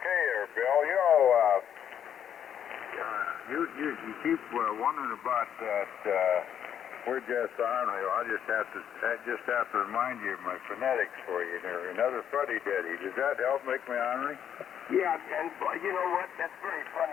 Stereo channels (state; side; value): quieter; right; 9.2 dB